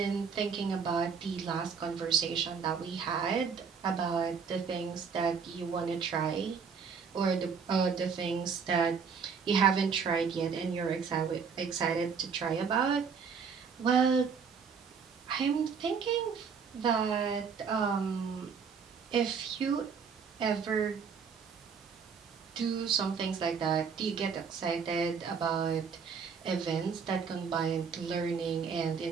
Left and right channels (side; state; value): left; quieter; 6.0 dB